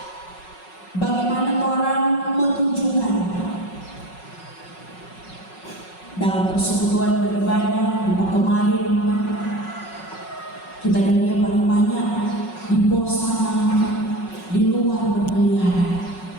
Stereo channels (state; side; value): late; right; 5.4 ms